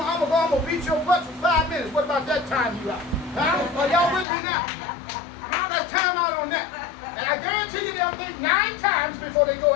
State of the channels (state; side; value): drops out; right; at 4.2 s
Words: to beat your butt for 5 minutes. What about that time you out? Are y'all with me now? Now let's time out on that. And I guarantee you they'll think 9 times before they go